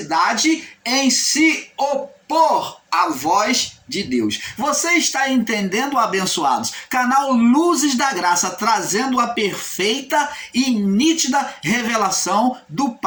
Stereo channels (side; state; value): both; identical; correlation 1.00